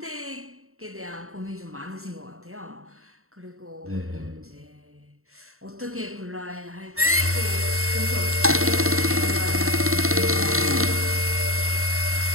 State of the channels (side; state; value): left; late; 0.63 ms